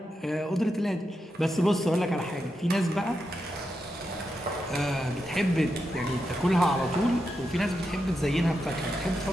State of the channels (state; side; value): normal; both; correlation 0.86